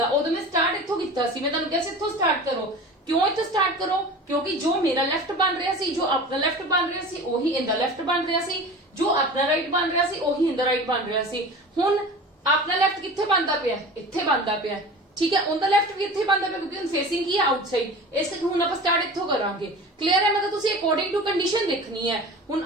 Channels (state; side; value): normal; both; correlation 0.36